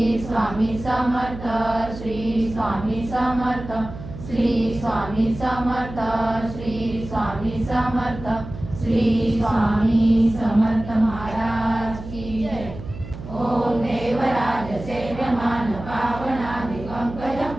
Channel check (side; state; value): right; noise; hum, 12 dB below the sound